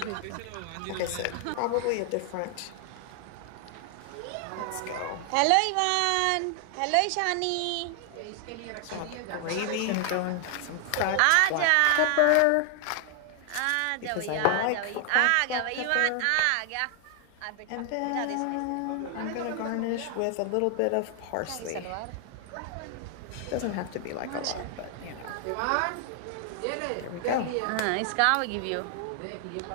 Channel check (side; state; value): both; different; correlation 0.00